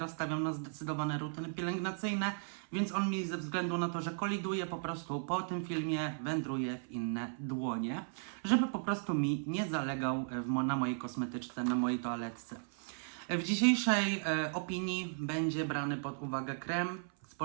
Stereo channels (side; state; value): left; silent; 54 dB below the other